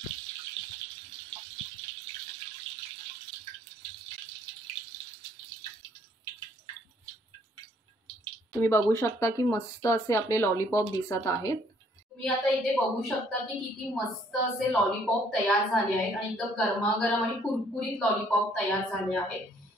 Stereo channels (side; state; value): both; normal; correlation 0.63